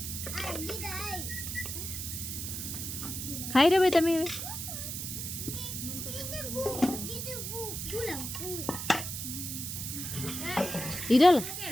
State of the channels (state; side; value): noise; right; hiss, 5 dB below the sound